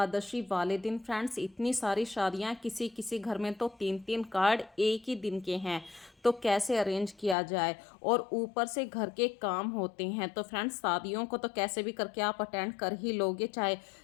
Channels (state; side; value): drops out; right; at 7.4 s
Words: वाले दिन फ्रेंड्स इतनी सारी शादियां, किसी किसी घर में तो 3-3 कार्ड एक ही दिन के हैं। तो कैसे अरेंज किया जाए, और ऊपर से घर के काम होते हैं। तो फ्रेंड्स शादियों को तो कैसे भी करके आप अटेंड कर ही लोगे, चाहे